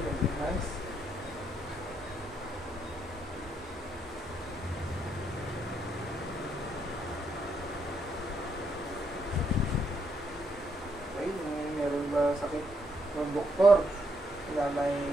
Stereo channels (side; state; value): both; normal; correlation 0.75